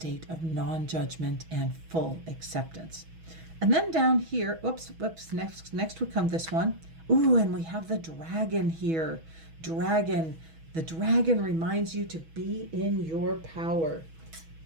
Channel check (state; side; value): late; left; 6.2 ms